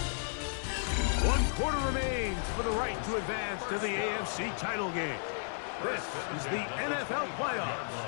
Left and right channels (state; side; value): silent; right; digital silence